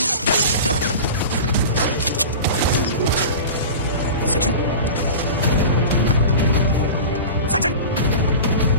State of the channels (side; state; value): both; inverted; correlation -0.32